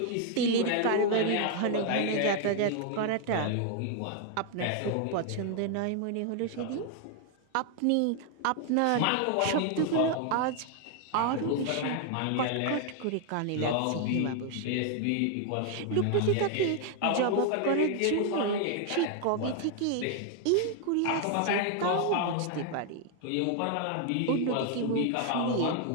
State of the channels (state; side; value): different; both; correlation 0.00